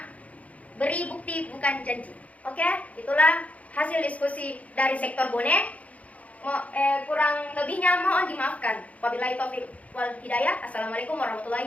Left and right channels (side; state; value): right; late; 0.068 ms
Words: beri bukti bukan janji. Oke, itulah hasil diskusi dari sektor bonek. Kurang lebihnya mohon dimaafkan. Wabillahi taufiq wal hidayah. Assalamualaikum